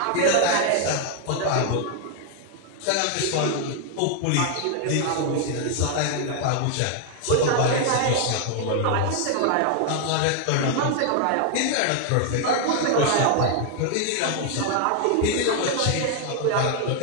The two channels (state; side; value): different; both; correlation 0.00